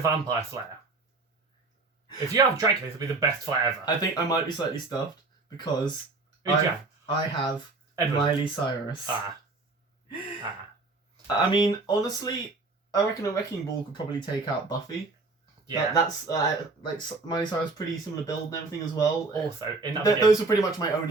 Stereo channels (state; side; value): quieter; left; 3.6 dB